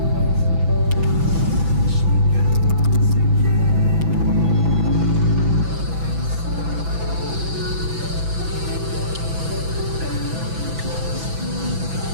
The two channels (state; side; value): late; left; 6.0 ms